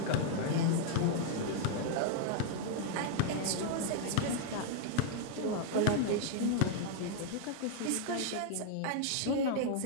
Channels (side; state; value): both; different; correlation -0.01